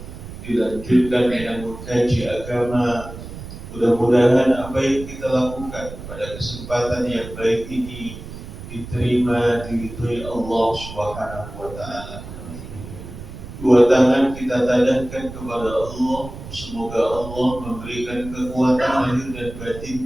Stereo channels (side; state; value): right; noise; rumble, 12 dB below the sound